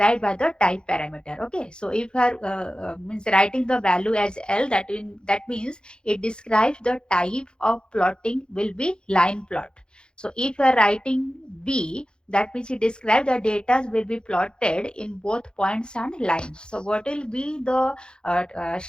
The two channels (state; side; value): late; right; 0.049 ms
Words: by the type parameter. Okay, so if you are means writing the value as L, that means it describes the type of plotting will be line plot. So if you are writing B, that means it describes the data will be plotted in both points and lines. So what will be the